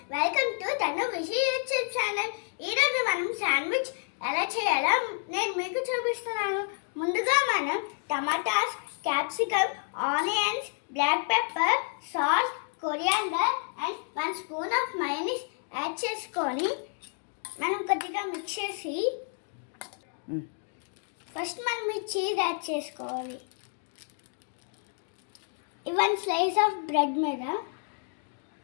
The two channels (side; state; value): right; silent; 58 dB below the other